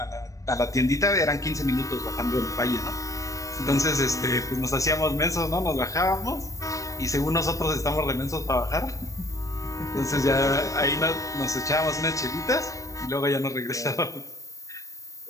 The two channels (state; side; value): late; right; 0.16 ms